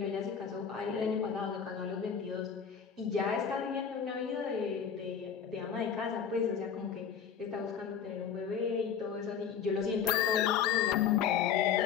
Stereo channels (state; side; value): quieter; right; 7.5 dB